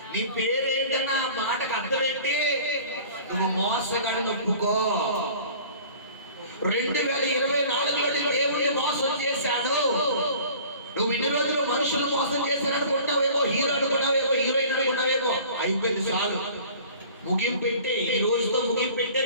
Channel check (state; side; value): inverted; both; correlation -0.46